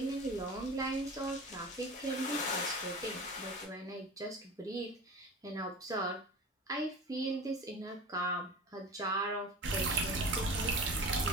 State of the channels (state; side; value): normal; both; correlation 0.34